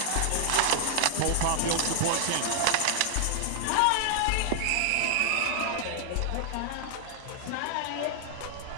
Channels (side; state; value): both; different; correlation 0.00